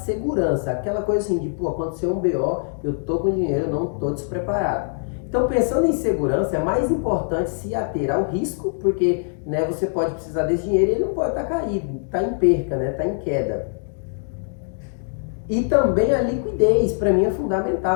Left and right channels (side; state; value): right; silent; digital silence